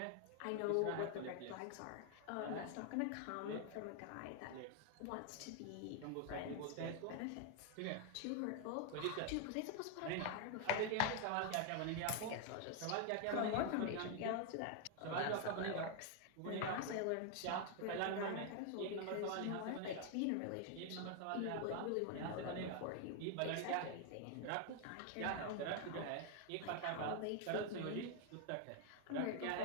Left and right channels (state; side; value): different; both; correlation 0.00